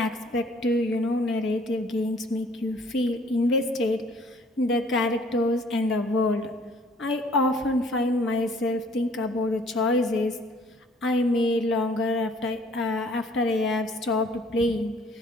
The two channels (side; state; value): both; normal; correlation 0.57